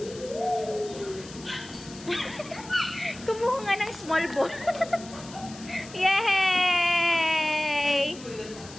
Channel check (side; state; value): left; noise; hiss, 17 dB below the sound